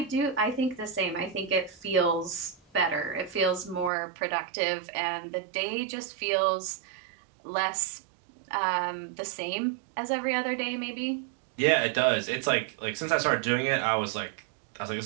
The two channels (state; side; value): drops out; left; at 3.9 s